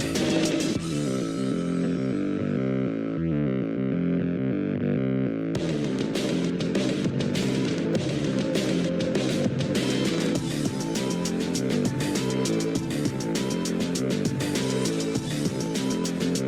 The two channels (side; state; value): both; identical; correlation 1.00